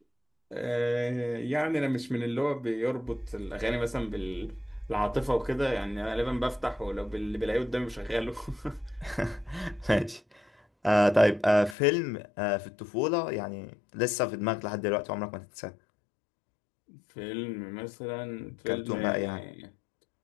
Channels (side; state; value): right; drops out; at 11.8 s